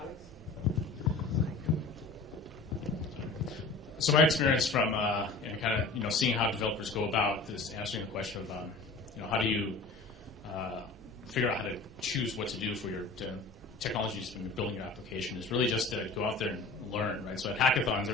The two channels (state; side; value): quieter; right; 3.7 dB